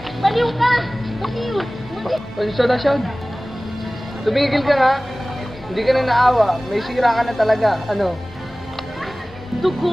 Baliw ka! Baliw! Pasensya na siya. Tumigil ka nga. Hindi ka na naawa. May sira ka na talaga. Ano?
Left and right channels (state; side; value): normal; both; correlation 0.98